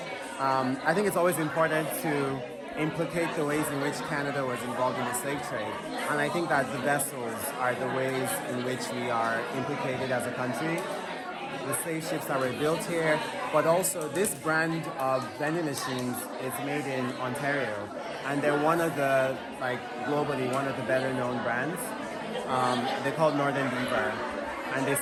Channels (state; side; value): identical; both; correlation 1.00